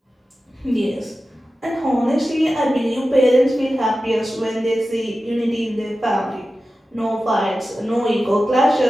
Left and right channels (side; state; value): both; normal; correlation 0.94